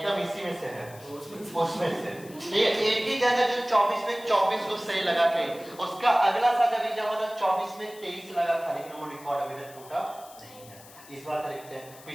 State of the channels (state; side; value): noise; left; hiss, 20 dB below the sound